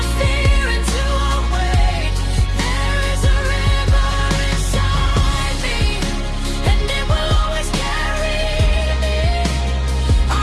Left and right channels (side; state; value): both; identical; correlation 1.00